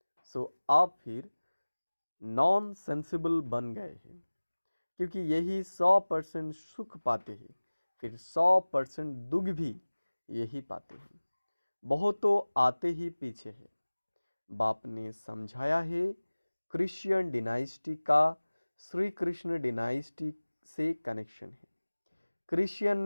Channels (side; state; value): both; inverted; correlation -1.00